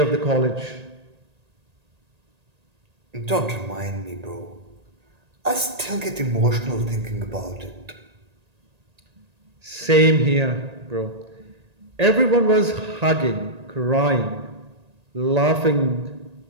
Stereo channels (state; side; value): late; left; 1.8 ms